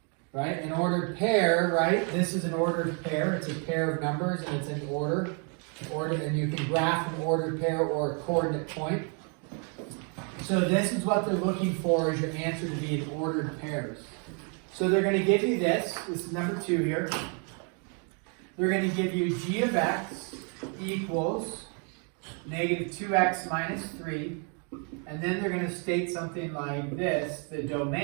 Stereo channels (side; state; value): left; quieter; 38.5 dB